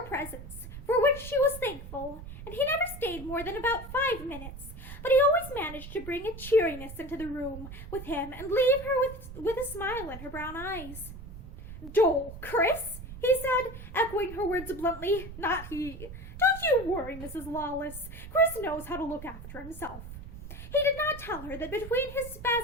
presents, for which she was thankful, and he never stayed more than about 5 minutes, but he always managed to bring a cheeriness into the room with him and leave her with a smile in her brown eyes. "Dull, Chris?" he said, echoing her words bluntly. "Not he. Don't you worry, Mrs. Lawless. Chris knows how to look after himself." He did not tell her that between his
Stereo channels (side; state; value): right; noise; rumble, 12 dB below the sound